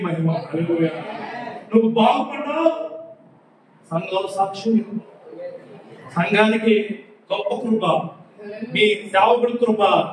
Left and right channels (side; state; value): both; identical; correlation 1.00